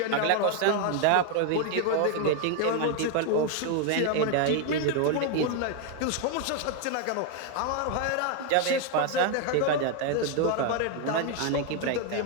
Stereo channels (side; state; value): both; different; correlation 0.01